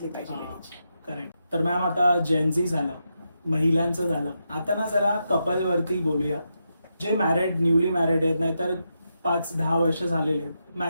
पाहिजे हा. लेडीची. करेक्ट. तर मॅम आता जेनझी झालं, महिलांचं झालं, आता ना जरा कपल वरती बोलूया. जे मॅरिड, न्यूली मॅरिड आहेत, नाहीतर 5-10 वर्ष झालेले आहेत,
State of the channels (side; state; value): both; inverted; correlation -0.85